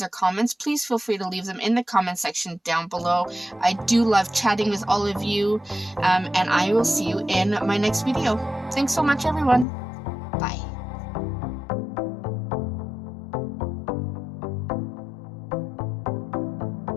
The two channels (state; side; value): drops out; right; at 9.7 s